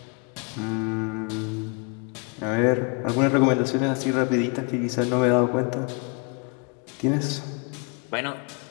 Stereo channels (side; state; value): right; quieter; 33.0 dB